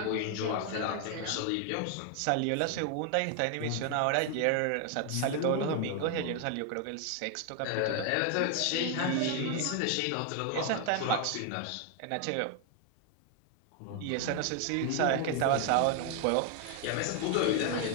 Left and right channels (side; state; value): both; different; correlation 0.00